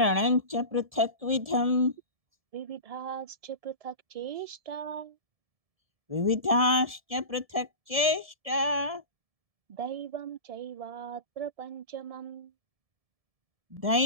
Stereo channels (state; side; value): late; left; 1.7 ms